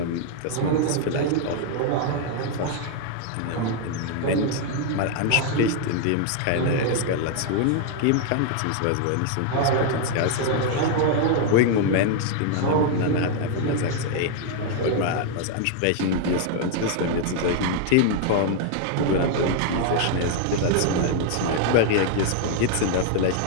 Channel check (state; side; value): different; both; correlation 0.00